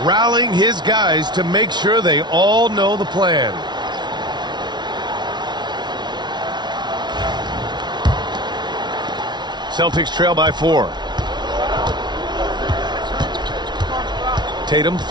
rallying his guys to make sure they all know the plan. Celtics trail by 4. Tatum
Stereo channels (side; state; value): left; late; 0.21 ms